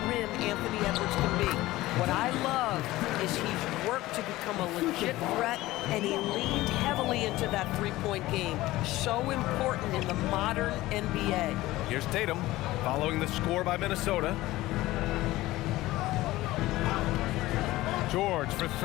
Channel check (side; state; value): right; quieter; 17.5 dB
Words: rim Anthony Edwards can be. What I love is he's worked to become a legit threat, and he leaned heavily into that three-point game. So important in the modern NBA. Here's Tatum following the score by Minnesota. George for